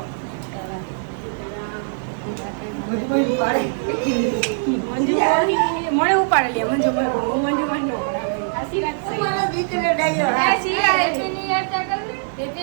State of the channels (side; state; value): left; silent; digital silence